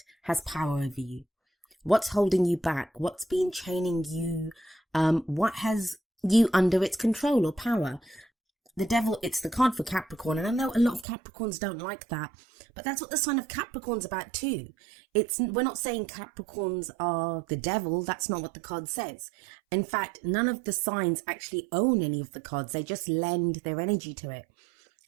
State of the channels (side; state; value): left; drops out; at 11.1 s